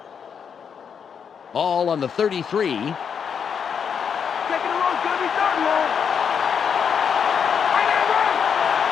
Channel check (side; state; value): right; quieter; 7.1 dB